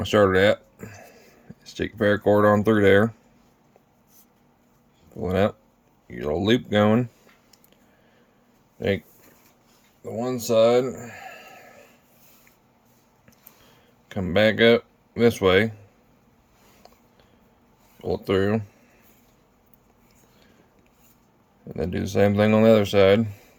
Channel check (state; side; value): identical; both; correlation 1.00